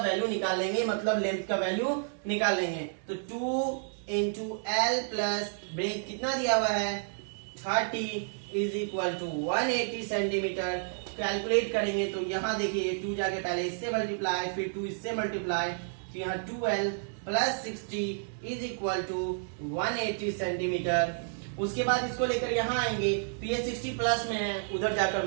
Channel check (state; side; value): silent; left; digital silence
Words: निकाल लेंगे, मतलब लेंथ का वैल्यू निकाल लेंगे। तो 2 इंटू एल प्लस ब्रेथ कितना दिया हुआ है 30 is equal to 180 centimetre. Calculate करेंगे तो यहाँ देखिए 2 जाके पहले इससे मल्टीप्लाई, फिर 2 इससे मल्टीप्लाई, तो यहाँ 2l plus 60 is equal to 180 centimetre. उसके बाद इसको लेकर यहाँ आएंगे तो ये 60 प्लस में है, उधर जाकर